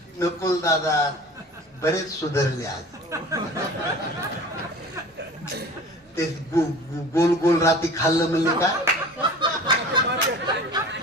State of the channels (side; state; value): both; normal; correlation 0.41